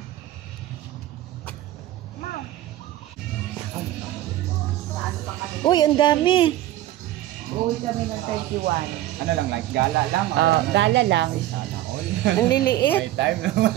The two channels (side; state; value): left; quieter; 14.4 dB